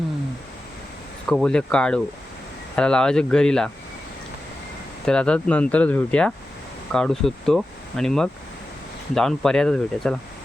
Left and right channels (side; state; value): both; normal; correlation 0.92